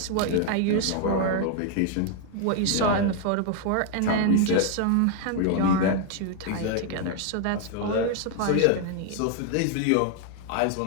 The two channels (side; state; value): both; different; correlation 0.00